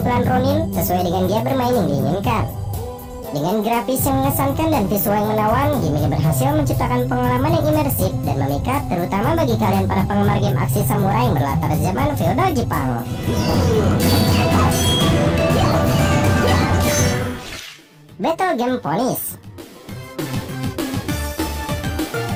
Ronin sesuai dengan dia bermain yang diinginkan. Dengan grafis yang mengesankan dan visual yang menawan, game ini berhasil menciptakan pengalaman yang imersif dan memikat, terutama bagi kalian para penggemar game aksi samurai yang berlatar zaman feodal Jepang. Battle Game Ponies.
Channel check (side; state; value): both; identical; correlation 1.00